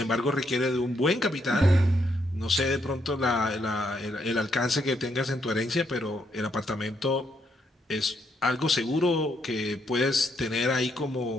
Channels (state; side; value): normal; both; correlation 0.76